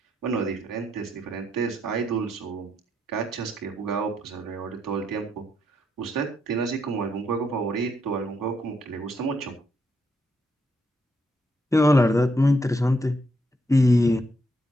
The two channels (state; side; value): normal; both; correlation 0.77